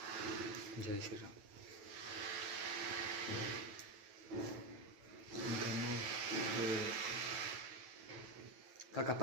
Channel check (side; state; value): left; late; 9.1 ms